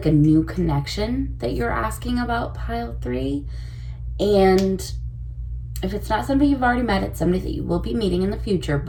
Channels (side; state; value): both; identical; correlation 1.00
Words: a new connection that you're asking about, pile 3. And if it's not somebody you've already met, it's somebody that you will be meeting in the future.